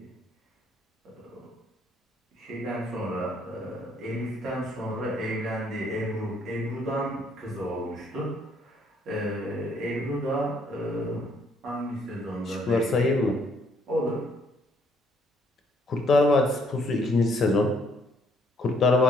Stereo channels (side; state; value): both; normal; correlation 0.67